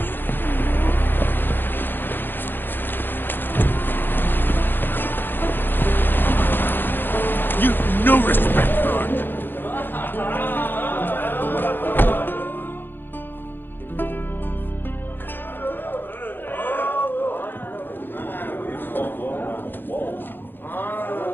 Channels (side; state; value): right; late; 0.098 ms